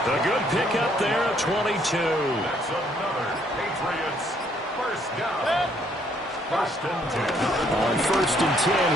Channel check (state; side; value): normal; both; correlation 0.67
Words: A good pickup there at 22. That's another Patriots first down. First and 10. On first and 10,